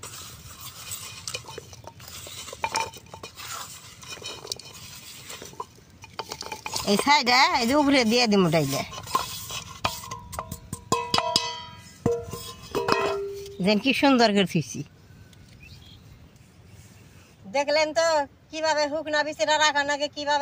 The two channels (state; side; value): identical; both; correlation 1.00